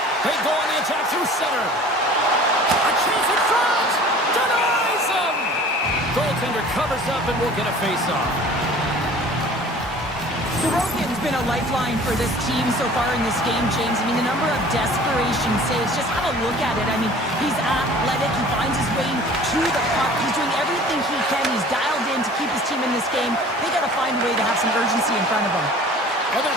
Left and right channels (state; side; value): normal; both; correlation 0.46